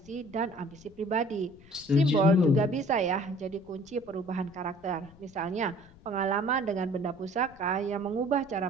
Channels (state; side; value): noise; left; rumble, 24 dB below the sound